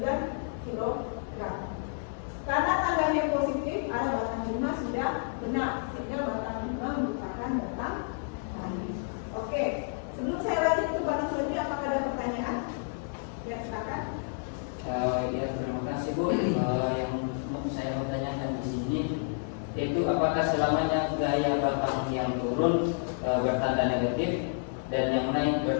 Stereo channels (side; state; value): right; silent; digital silence